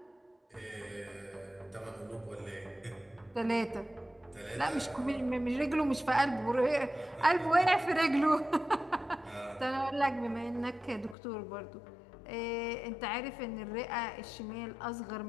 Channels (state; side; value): drops out; right; at 11.2 s